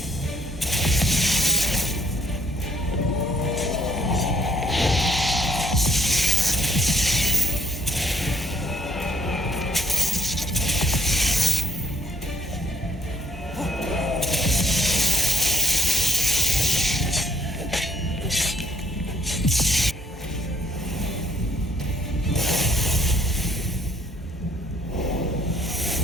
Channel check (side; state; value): both; normal; correlation 0.69